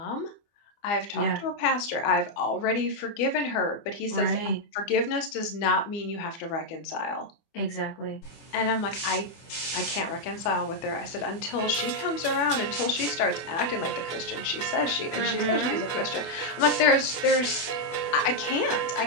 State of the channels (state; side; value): late; right; 24 ms